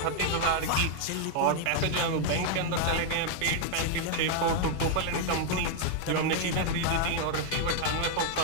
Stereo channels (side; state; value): both; different; correlation 0.00